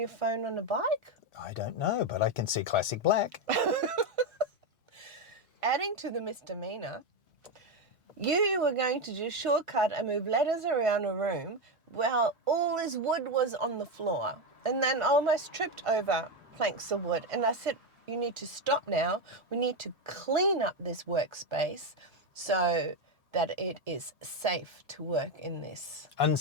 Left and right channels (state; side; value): normal; both; correlation 0.09